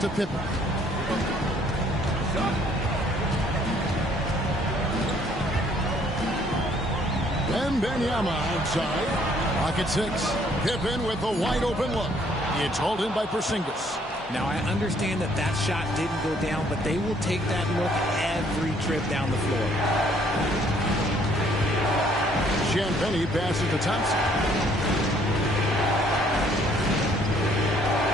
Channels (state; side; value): normal; both; correlation 0.63